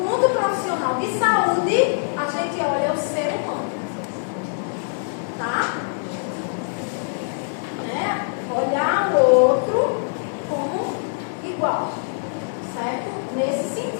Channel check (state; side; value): silent; right; digital silence